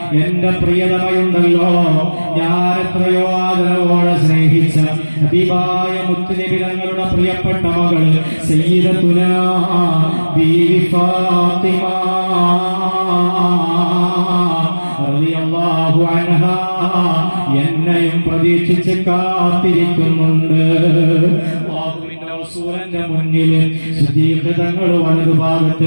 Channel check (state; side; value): inverted; both; correlation -1.00